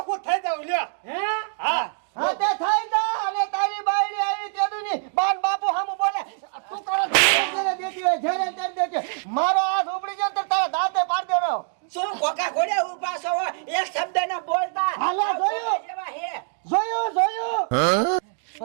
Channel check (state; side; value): silent; left; digital silence